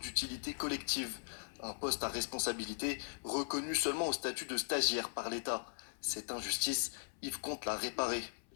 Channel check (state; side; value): silent; right; 52 dB below the other